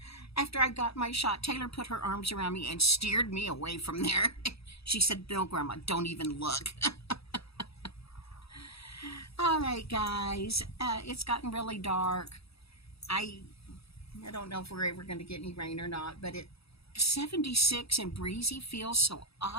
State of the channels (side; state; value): right; late; 0.77 ms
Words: After I got my shot, Taylor put her arms around me and steered me away from there. She said, "No, Grandma, don't even look." All right, guys, it's gotten really dark. I don't know if we're ever going to get any rain or not, but 76 and breezy feels so